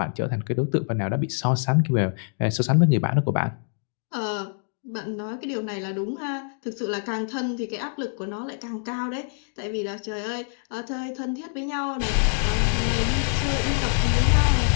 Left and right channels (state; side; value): silent; right; 59 dB below the other